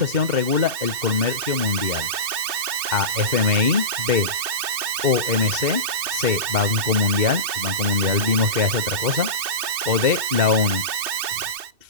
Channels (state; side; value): late; left; 2.7 ms